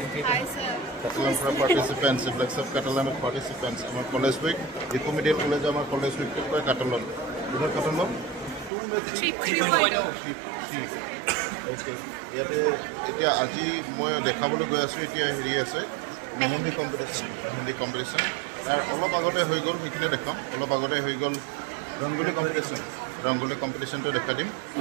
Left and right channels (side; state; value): left; drops out; at 8.7 s